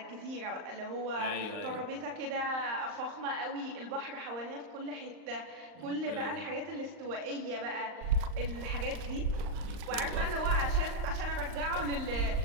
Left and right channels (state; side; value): late; left; 39 ms